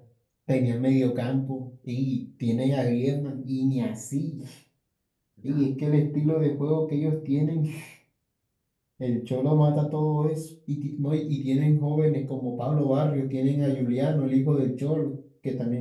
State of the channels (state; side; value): identical; both; correlation 1.00